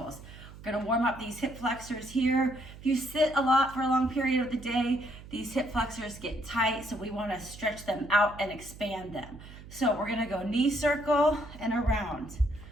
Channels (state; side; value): noise; right; hum, 16 dB below the sound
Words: We're going to warm up these hip flexors here. If you sit a lot for a long period of the day, these hip flexors get tight, so we want to stretch them out and expand them. So we're going to go knee circle and around.